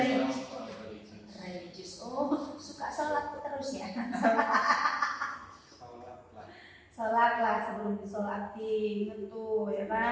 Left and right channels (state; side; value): identical; both; correlation 1.00